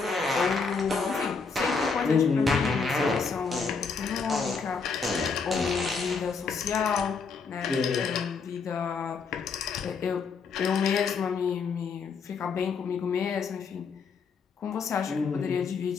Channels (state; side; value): quieter; right; 5.1 dB